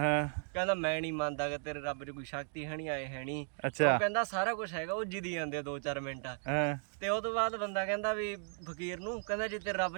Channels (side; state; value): left; silent; 54 dB below the other